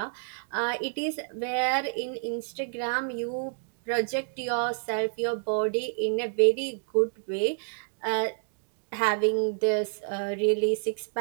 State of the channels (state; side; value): silent; left; 59 dB below the other